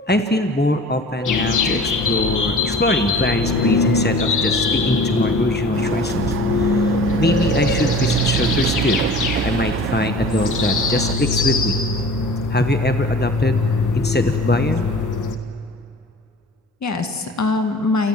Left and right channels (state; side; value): normal; both; correlation 0.43